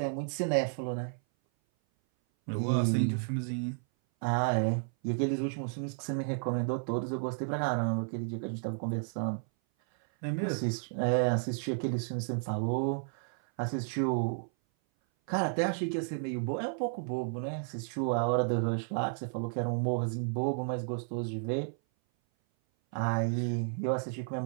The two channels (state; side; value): silent; left; 56 dB below the other